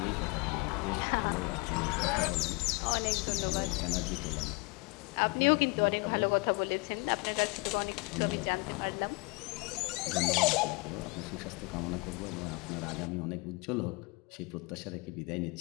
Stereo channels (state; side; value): quieter; right; 27.4 dB